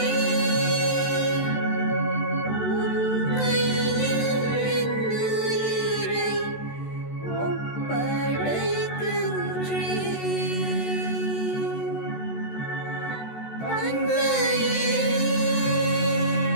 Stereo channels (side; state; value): right; late; 14 ms